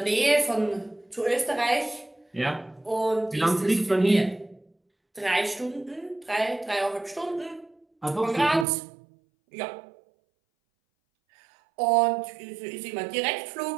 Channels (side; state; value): left; drops out; at 8.7 s